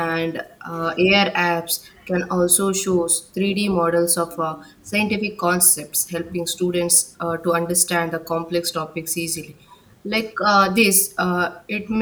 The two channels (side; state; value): both; identical; correlation 1.00